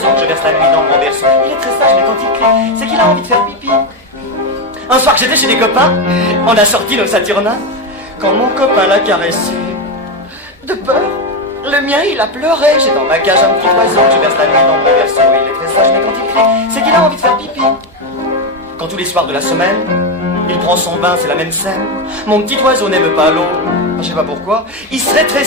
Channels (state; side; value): normal; both; correlation 0.11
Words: que je verse la nuit dans mon berceau. Il est très sage, mais quand il crie, c'est qu'il a envie de faire pipi. Un soir que j'étais chez des copains, on a sorti nos Saturnin. Quand mon copain l'a caressé, de peur, le mien il a pleuré. J'ai dans ma cage un petit oiseau que je verse la nuit dans mon berceau. Il est très sage, mais quand il crie, c'est qu'il a envie de faire pipi. Quand tous les soirs de la semaine, il prend son bain, c'est la même scène. Mon petit oiseau n'aime pas l'eau, je sais pas pourquoi. Il se